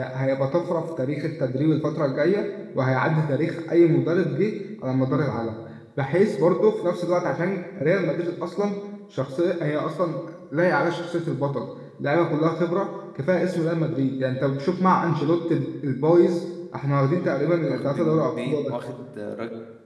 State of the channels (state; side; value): identical; both; correlation 1.00